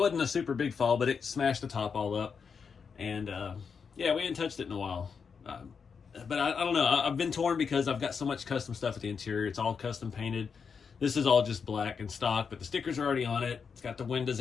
a super big fall, but it smashed the top all up. And yeah, we hadn't touched it in a while. But I don't know. I've been torn because I've got so much custom stuff at the interior. It's all custom painted. This is all just black and stock, but the stickers are already on it. It's got the windows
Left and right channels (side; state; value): right; quieter; 6.0 dB